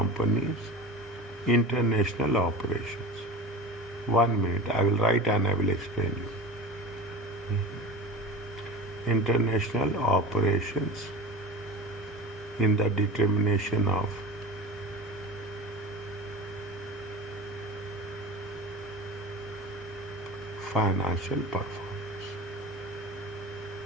international operations. 1 minute, I will write and I will explain you. International operations in the determination of financial performance.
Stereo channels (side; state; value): both; normal; correlation 0.33